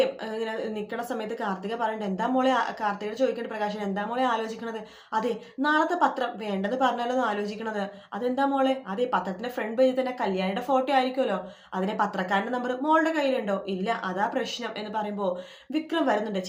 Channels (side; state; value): both; identical; correlation 1.00